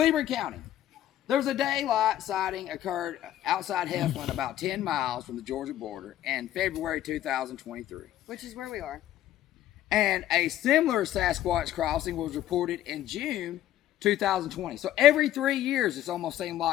County, there was a daylight sighting occurred outside Heflin, about 10 miles from the Georgia border, in February 2023. Which is where we are. And a similar Sasquatch crossing was reported in June 2020. So every 3 years, it's almost seemed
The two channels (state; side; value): quieter; right; 12.7 dB